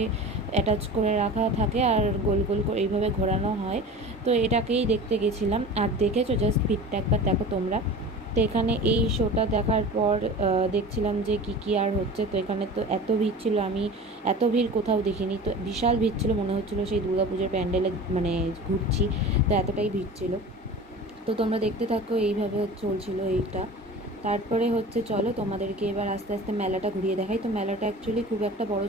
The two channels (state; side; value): normal; both; correlation 0.36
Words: অ্যাটাচ করে রাখা থাকে আর গোল গোল করে এইভাবে ঘোরানো হয়। তো এটাকেই দেখতে গেছিলাম। আর দেখেছো জাস্ট ভিড়টা একবার দেখো তোমরা। তো এখানে এই শোটা দেখার পর দেখছিলাম যে কী আর হচ্ছে। তো এখানে তো এত ভিড় ছিল, আমি এত ভিড় কোথাও দেখিনি। তো বিশাল ভিড় ছিল, মনে হচ্ছিলো সেই দুর্গাপুজোর প্যান্ডেলে মানে ঘুরছি। তো এতটাই ভিড় ছিল। তো তোমরা দেখতে থাকো, এইভাবে চলছিল এইটা। তারপরে হচ্ছে চলো তোমাদেরকে এবার আস্তে আস্তে মেলাটা ঘুরিয়ে দেখাই। তো মেলাটা অ্যাকচুয়ালি খুব একটা বড়